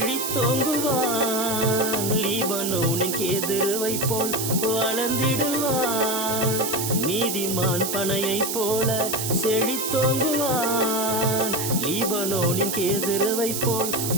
லீபனோனின் கேதுருவை போல் வளர்ந்திடுவான். நீதிமான் பனையைப் போல செழித்தோங்குவான், லீபனோனின் கேதுருவை போல்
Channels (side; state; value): right; noise; hiss, 3 dB below the sound